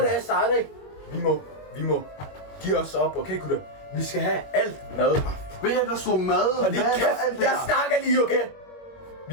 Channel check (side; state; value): right; late; 21 ms